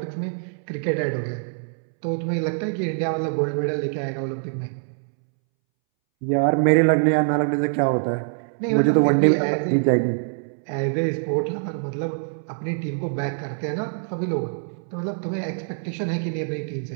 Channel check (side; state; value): left; silent; 62 dB below the other